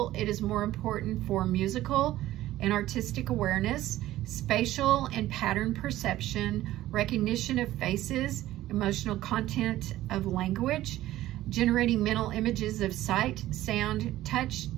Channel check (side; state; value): left; quieter; 14.9 dB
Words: it is more important for musical and artistic awareness, spatial and pattern perception, recognition of faces, emotional content of language, generating mental images of sight, sound, touch,